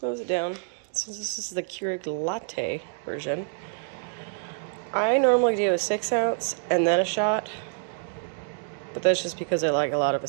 it down. Since this is the Keurig latte version, I normally do a 6 ounce and then a shot, but that's just because I like a lot of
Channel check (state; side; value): silent; left; digital silence